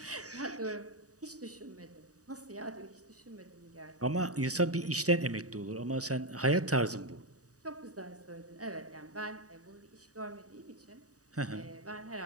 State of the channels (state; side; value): late; left; 0.66 ms